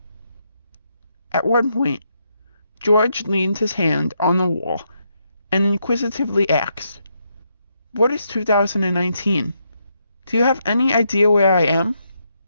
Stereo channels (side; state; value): both; inverted; correlation -0.79